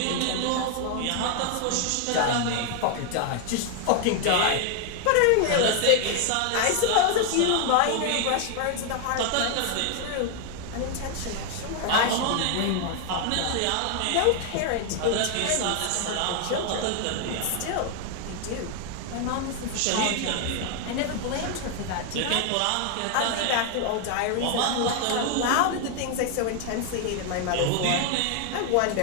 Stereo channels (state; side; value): different; both; correlation 0.01